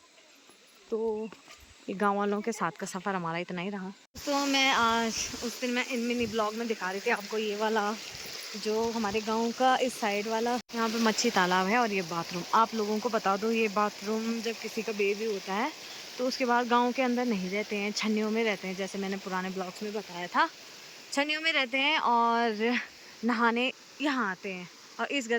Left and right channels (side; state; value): both; identical; correlation 1.00